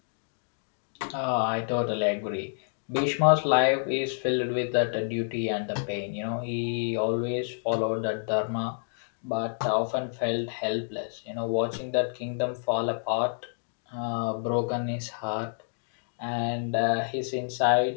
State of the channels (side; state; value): right; silent; digital silence